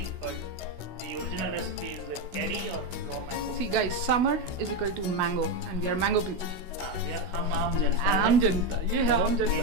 but the original recipe is with cherry or raw mango. See guys, summer is equal to mango and we are mango people. हम आम जनता आम जनता, ये है आम जनता. ये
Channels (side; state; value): left; late; 16 ms